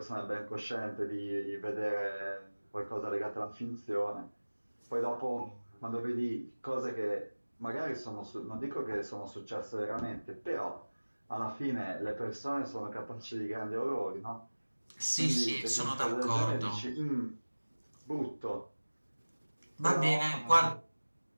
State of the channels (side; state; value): both; inverted; correlation -1.00